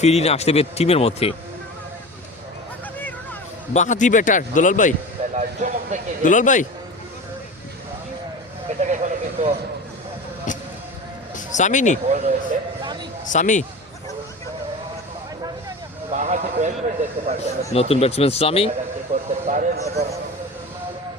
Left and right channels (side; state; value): both; normal; correlation 0.32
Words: আসতে হবে টিমের মধ্যে। বাহাতি ব্যাটার দুলাল ভাই, দুলাল ভাই এটাকে এখানে কিন্তু সামিনি বল রয়েছে, সামি, বাহাতি ব্যাটসম্যান দেখতে পাচ্ছেন নতুন ব্যাটসম্যান সামি। কি করতে পারেন এবং